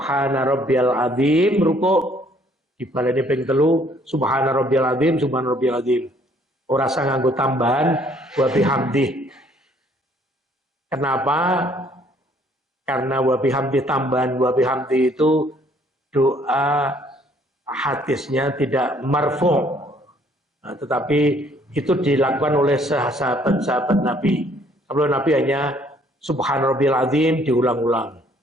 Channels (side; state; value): both; normal; correlation 0.62